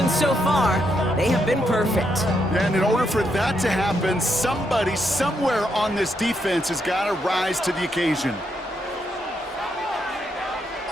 so far, they have been perfect. And in order for that to happen, somebody somewhere on this defense has got to rise to the occasion.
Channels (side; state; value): both; normal; correlation 0.79